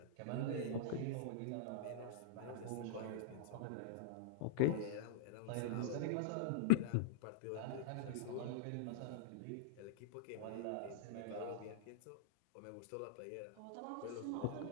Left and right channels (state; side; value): different; both; correlation -0.02